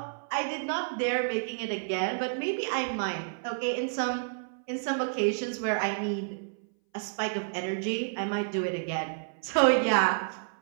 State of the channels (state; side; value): silent; left; 58 dB below the other